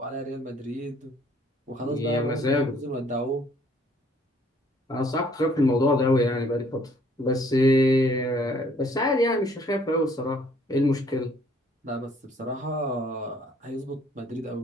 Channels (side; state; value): both; normal; correlation 0.61